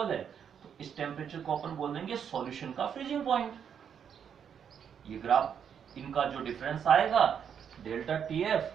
है, तो इस टेम्परेचर को अपन बोल देंगे सॉल्यूशन का फ्रीजिंग पॉइंट। ये ग्राफ इनका जो डिफरेंस आएगा डेल्टा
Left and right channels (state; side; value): quieter; left; 7.9 dB